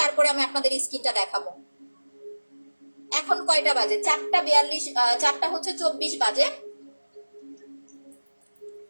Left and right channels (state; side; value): inverted; both; correlation -1.00